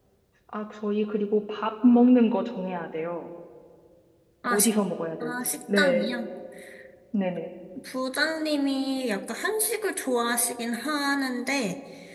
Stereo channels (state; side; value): identical; both; correlation 1.00